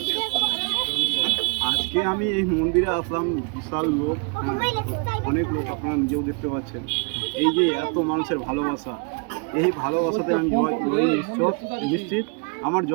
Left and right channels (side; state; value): left; quieter; 35.9 dB